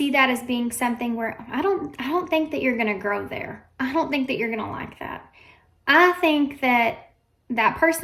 that as being something where, I don't think that you're going to grow there. I don't think that you're going to like that. I think that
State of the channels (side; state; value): both; identical; correlation 1.00